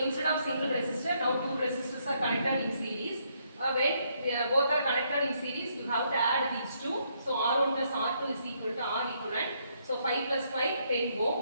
of single resistor, now two resistors are connected in series. When both are connected in series, you have to add these two. So R1 plus R2 is equal to R equivalent. So 5 plus 5, 10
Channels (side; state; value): both; inverted; correlation -0.73